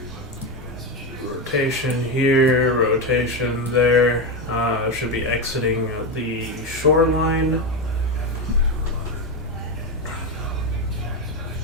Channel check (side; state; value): both; normal; correlation 0.13